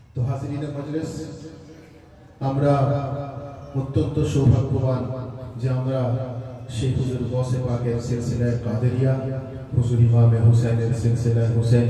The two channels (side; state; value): both; identical; correlation 1.00